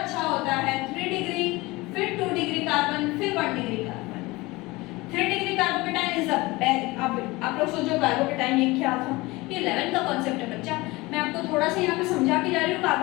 होता है 3 डिग्री, फिर 2 डिग्री कार्बन, फिर 1 degree carbon. 3 degree carbocation is the best. आप लोग सोचो कार्बोकेटाइन ये क्या था? ये 11th का कॉन्सेप्ट है बच्चा, मैं आपको थोड़ा सा यहाँ पे समझा के जा रही हूँ।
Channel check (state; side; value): quieter; right; 21.9 dB